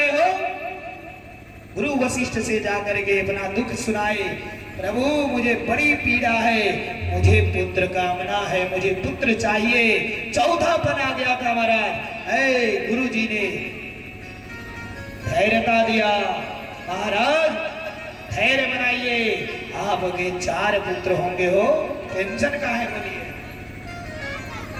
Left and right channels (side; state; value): both; identical; correlation 1.00